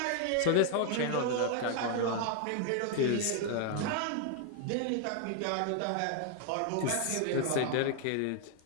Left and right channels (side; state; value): both; different; correlation 0.00